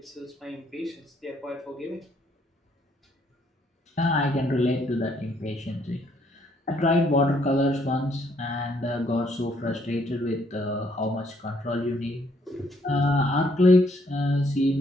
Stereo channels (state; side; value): normal; both; correlation 0.68